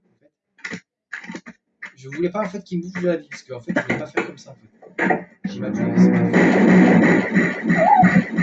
Je voulais pas en fait qu'il me bouffe de la vie parce qu'en fait, je voulais pas faire comme ça en fait. J'ai ma tué, c'est pas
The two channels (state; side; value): identical; both; correlation 1.00